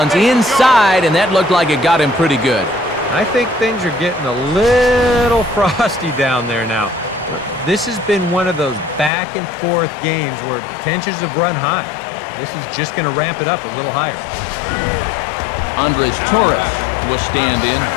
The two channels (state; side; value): drops out; right; at 9.1 s